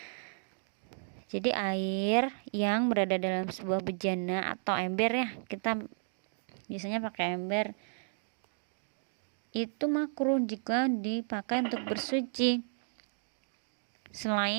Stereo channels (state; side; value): silent; left; digital silence